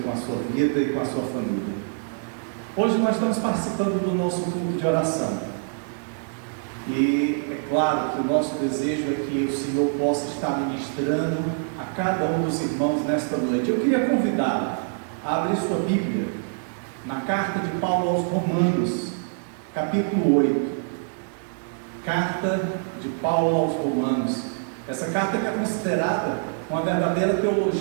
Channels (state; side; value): silent; left; digital silence